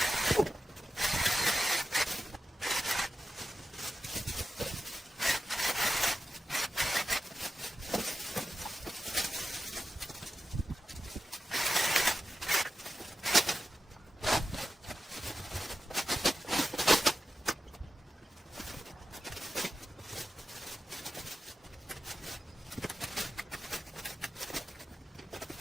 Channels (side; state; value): both; normal; correlation 0.90